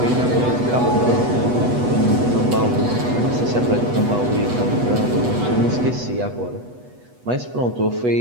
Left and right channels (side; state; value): left; late; 8.1 ms